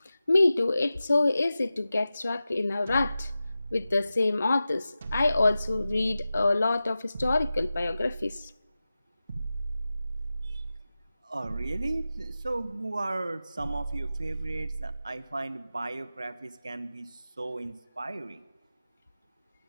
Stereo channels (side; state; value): both; inverted; correlation -0.94